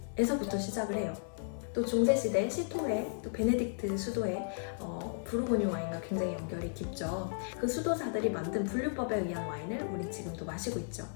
시작을 해요. 또 중세시대 시토에, 또 베네딕트 수도에 부르고뉴 와인과 굉장히 연결이 깊죠. 그 수도사들이 만든 분류법에 의한 와인을 우린 지금도 마시고 있죠.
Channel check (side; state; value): right; silent; 55 dB below the other